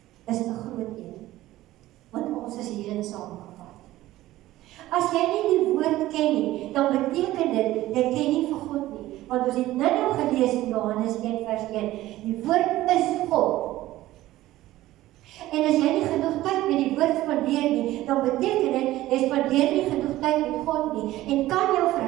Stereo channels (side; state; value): left; quieter; 15.8 dB